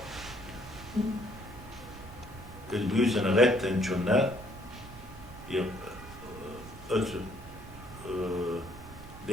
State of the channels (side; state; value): right; noise; rumble, 14 dB below the sound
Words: أسبوسن غتن جنا